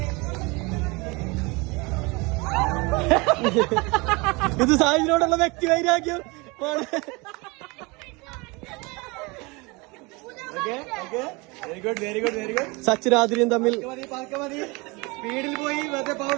ഇത് സായിനോടുള്ള വ്യക്തി വൈരാഗ്യം. Very good. സച്ചിനാദ്രിയും തമ്മിൽ മതി. സ്പീഡിൽ പോയി വെറുതെ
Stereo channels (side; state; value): left; quieter; 26.4 dB